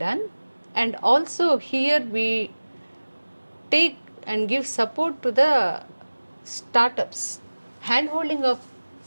and also here we take and give support to the startups. Handholding of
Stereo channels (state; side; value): inverted; both; correlation -1.00